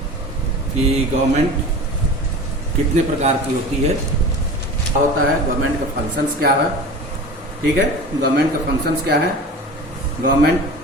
कि गवर्नमेंट कितने प्रकार की होती है, क्या होता है, गवर्नमेंट का फंक्शंस क्या है। ठीक है, गवर्नमेंट का फंक्शंस क्या है, गवर्नमेंट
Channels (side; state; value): both; normal; correlation 0.35